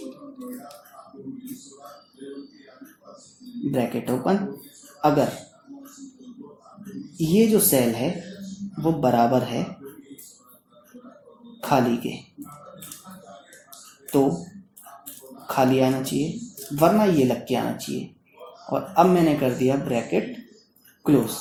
ब्रैकेट ओपन, अगर ये जो सेल है वो बराबर है खाली के तो खाली आना चाहिए, वरना ये लग के आना चाहिए। और अब मैंने कर दिया ब्रैकेट क्लोज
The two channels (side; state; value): both; identical; correlation 1.00